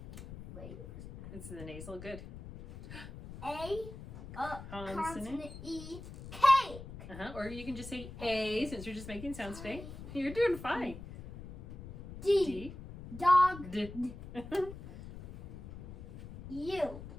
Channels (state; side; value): noise; left; rumble, 13 dB below the sound